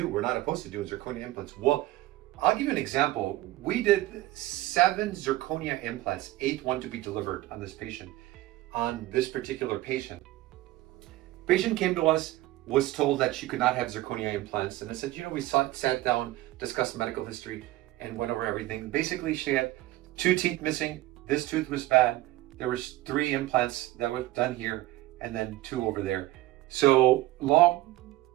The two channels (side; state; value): left; quieter; 16.6 dB